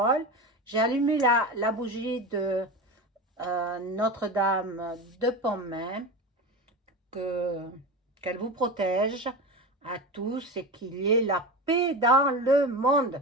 J'ai allumé la bougie de Notre-Dame de Pontmain, qu'elle vous protège à tous et qu'il y ait la paix dans le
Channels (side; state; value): both; normal; correlation 0.24